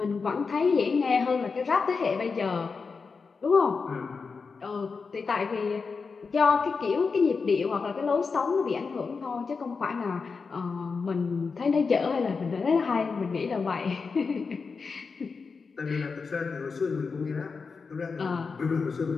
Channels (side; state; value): right; quieter; 4.9 dB